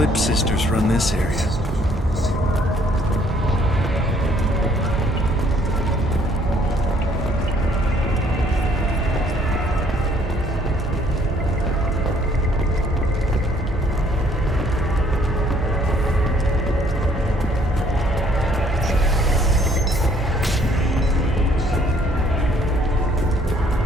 sisters run this area.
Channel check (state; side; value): normal; both; correlation 0.62